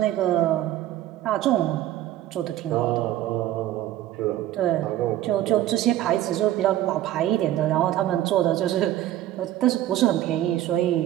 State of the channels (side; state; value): left; quieter; 13.6 dB